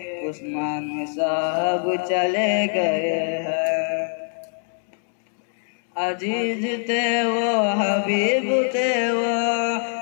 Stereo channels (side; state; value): right; silent; 63 dB below the other